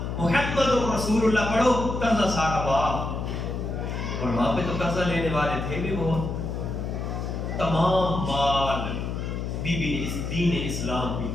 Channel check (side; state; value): left; noise; hum, 4 dB below the sound